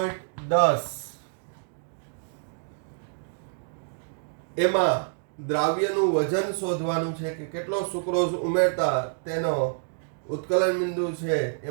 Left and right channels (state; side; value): silent; left; digital silence